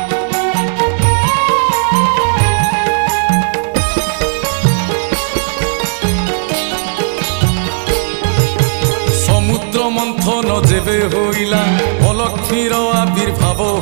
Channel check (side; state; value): left; silent; digital silence